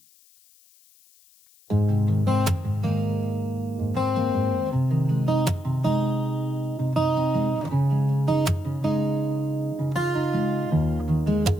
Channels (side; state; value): left; noise; hiss, 29 dB below the sound